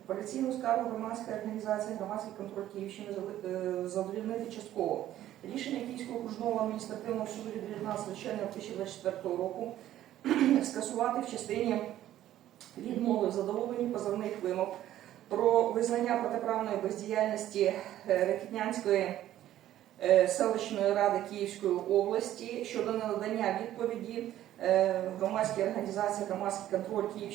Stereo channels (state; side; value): quieter; left; 12.9 dB